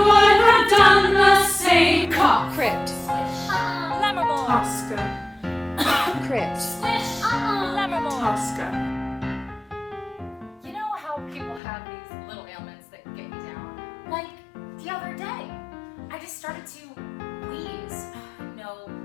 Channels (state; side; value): drops out; right; at 11.6 s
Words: would have done the same. Cough. Crypt. Lammermoor. Tosca. Crypt. Lammermoor. Tosca. You know how just started to wheeze. No,